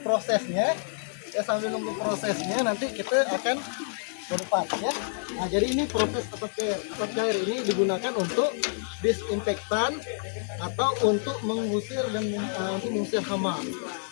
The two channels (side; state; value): right; silent; digital silence